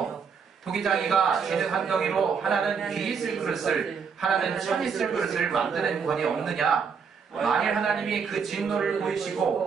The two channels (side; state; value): left; quieter; 6.1 dB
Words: 토기장이가 재능 한 덩이로 하나는 귀 있을 그릇을 하나는 천 있을 그릇을 만드는 권이 없느냐. 만일 하나님이 그 진노를